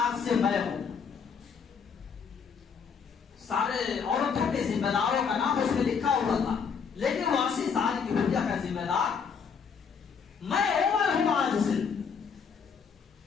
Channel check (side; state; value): right; quieter; 6.3 dB